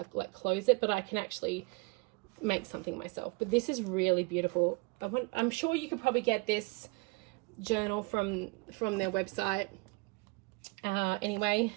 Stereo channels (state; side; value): quieter; left; 27.8 dB